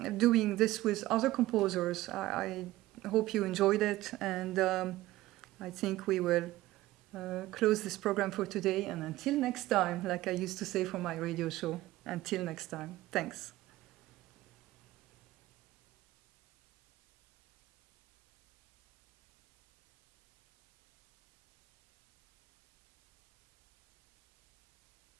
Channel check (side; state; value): left; quieter; 16.8 dB